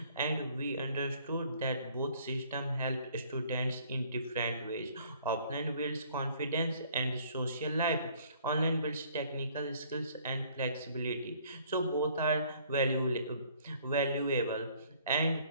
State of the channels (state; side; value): inverted; both; correlation -0.58